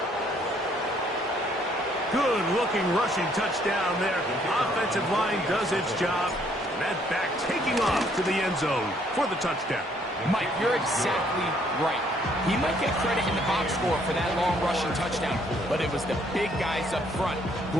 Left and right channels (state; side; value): normal; both; correlation 0.66